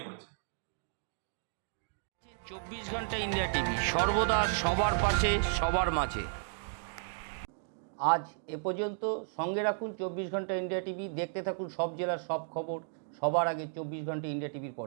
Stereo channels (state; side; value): silent; left; digital silence